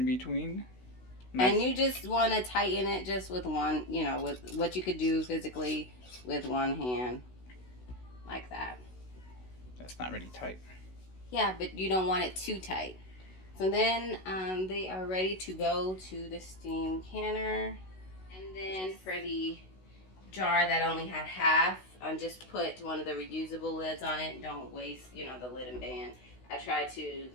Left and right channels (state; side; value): late; right; 16 ms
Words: between. Nice. And you just want to tighten it just with one, with what you could do physically with one hand, like that. That's not really tight. Yeah, but you don't want it too tight. So then they are ready to go to the steam canner. And then for the jar that only had half, just put one of the reusable lids on it. Don't waste, the lid and band. I try to